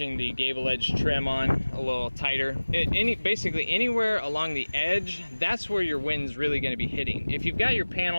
the gable edge trim on a little tighter. Basically anywhere along the edge, that's where your wind's really going to be hitting. If you've got your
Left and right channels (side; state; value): both; inverted; correlation -1.00